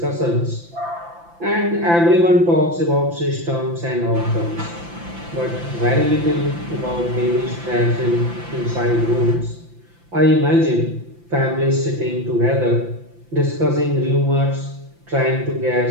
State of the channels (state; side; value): late; left; 5.9 ms